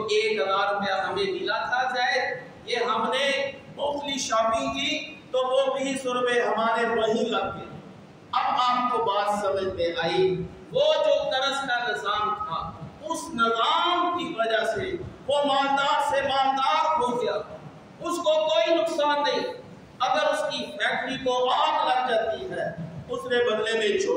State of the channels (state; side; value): identical; both; correlation 1.00